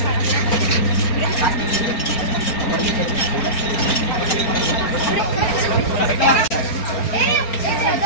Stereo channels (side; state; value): right; late; 4.4 ms